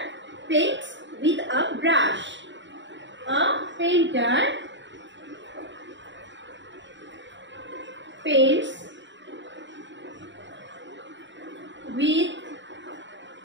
paints with a brush, a painter paints with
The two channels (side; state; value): left; late; 0.53 ms